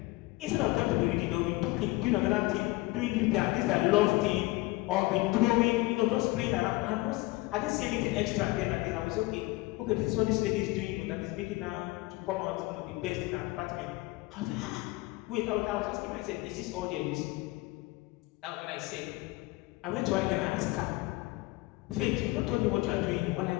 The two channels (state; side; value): quieter; right; 21.2 dB